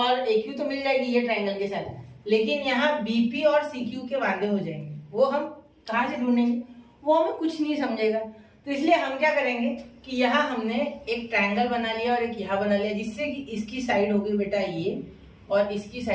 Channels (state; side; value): identical; both; correlation 1.00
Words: AQ तो मिल जाएगी ये ट्रायंगल के साथ, लेकिन यहाँ बीपी और CQ के वादे हो जाएंगे, वो हम कहाँ से ढूंढेंगे, वो हमें कुछ नहीं समझेगा। तो इसलिए हम क्या करेंगे कि यहाँ हमने एक ट्रायंगल बना लिया और एक यहाँ बना लिया, जिससे कि इसकी साइड होगी बेटा ये और इसकी